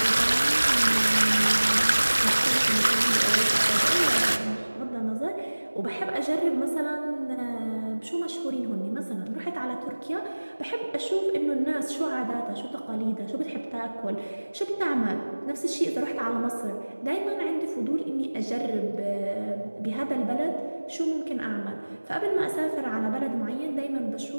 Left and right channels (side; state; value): both; inverted; correlation -1.00